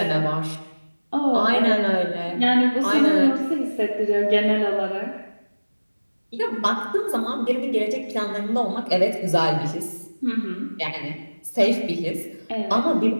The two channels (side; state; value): both; inverted; correlation -1.00